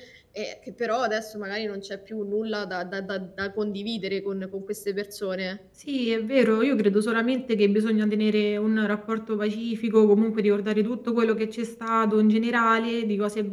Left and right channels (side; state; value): both; identical; correlation 1.00